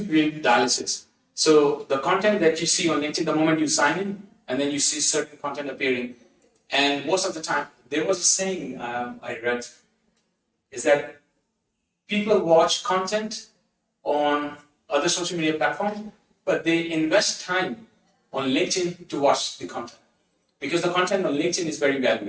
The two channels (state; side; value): identical; both; correlation 1.00